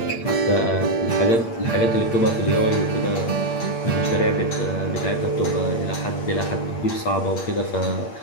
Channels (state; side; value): late; right; 8.7 ms